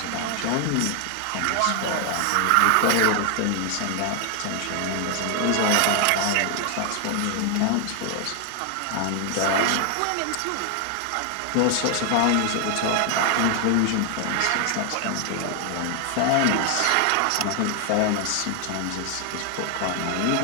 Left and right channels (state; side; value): different; both; correlation 0.00